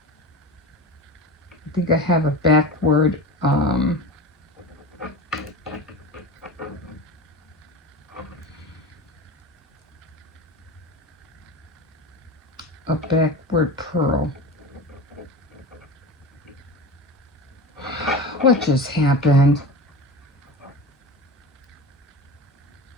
think I have a backward pearl. What just happened?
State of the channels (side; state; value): both; normal; correlation 0.30